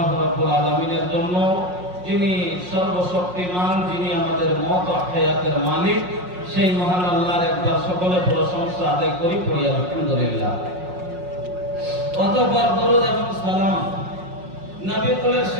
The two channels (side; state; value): left; late; 5.5 ms